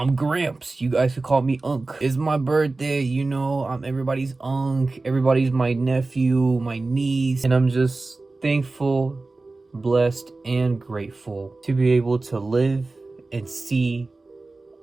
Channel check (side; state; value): left; quieter; 3.4 dB